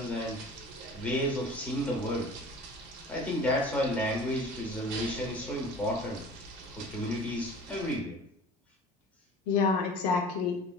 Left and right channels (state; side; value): normal; both; correlation 0.42